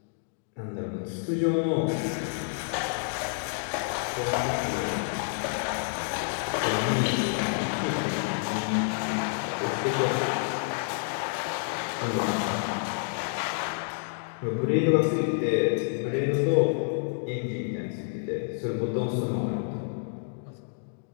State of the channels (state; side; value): silent; right; digital silence